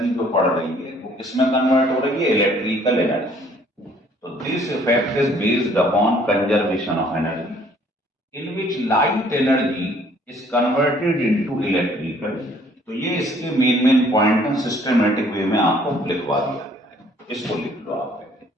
जो पड़ रही है वो किसमें कन्वर्ट हो रही है, इलेक्ट्रिकल एनर्जी। तो this effect is based upon conservation of energy in which light energy is converted into electrical. तो ये इसके मेन पॉइंट है, सिस्टमेटिक वे में आपको लिखवा दिया गया है, इसको लिख लो आप।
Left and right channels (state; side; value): normal; both; correlation 0.59